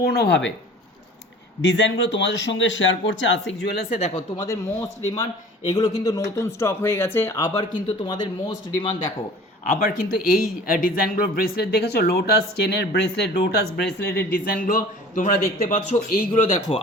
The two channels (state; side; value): normal; both; correlation 0.44